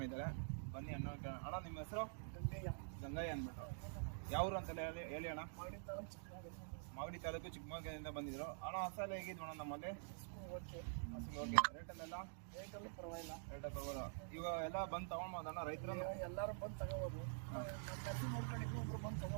ಬನ್ನಿ ಅಣ್ಣ. ಅಣ್ಣ ನಿಮ್ಮ ಹೆಸರು? ಗಂಗಯ್ಯ ಅಂದ್ಬಿಟ್ಟು. ಯಾವರು ಅಂತೆಲ್ಲ ಹೇಳಿ ಅಣ್ಣ. ಮಾಗಡಿ ತಾಲೂಕು ಚಿಕ್ಕಮಗಳೂರಿಂದ ಬಂದಿದ್ರು. ಅಣ್ಣ ಹಸೆಲ್ಲ ಹೇಗಿದ್ವು ಅಣ್ಣ ನಮ್ಮಲ್ಲಿ? ಹಸು ಓಕೆ. ರೇಟಲ್ಲೆಲ್ಲ ಪರವಾಗಿಲ್ಲ. ಇವಾಗ ಎಲ್ಲ ಬಂದು ತಗೊಂಡ್ಬೋದಣ್ಣ ರೈತರು? ಎಲ್ಲರೂ ಬಂದು ತಗೋಬೋದು. ಹಸು ನೋಡ್ಕೊಂಡು ಇನ್ನೊಬ್ರು ಬಂದು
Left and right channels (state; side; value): silent; left; digital silence